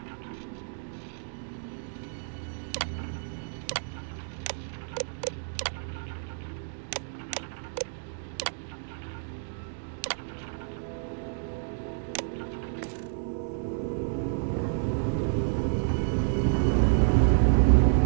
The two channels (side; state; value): left; silent; digital silence